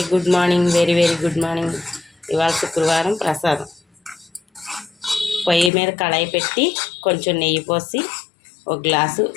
good morning, very very good morning. ఇవాళ శుక్రవారం ప్రసాదం. పొయ్యి మీద కళాయి పెట్టి కొంచెం నెయ్యి పోసి ఒక గ్లాసు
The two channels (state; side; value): drops out; right; at 5.7 s